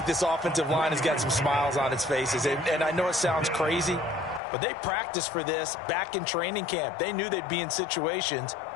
this offensive line has got some smiles on its faces. And I know it sounds crazy, but they practiced for this back in training camp. They knew they'd be in situations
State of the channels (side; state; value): right; drops out; at 4.4 s